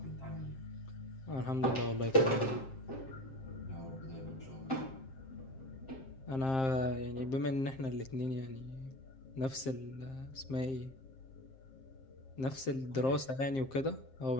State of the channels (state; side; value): late; right; 7.6 ms